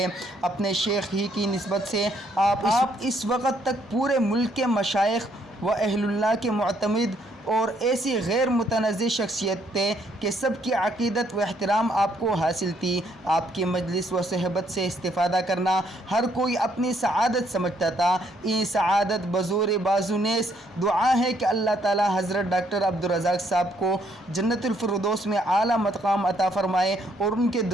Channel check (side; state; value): both; normal; correlation 0.70